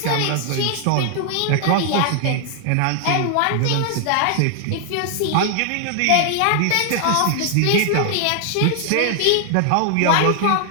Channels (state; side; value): different; both; correlation 0.00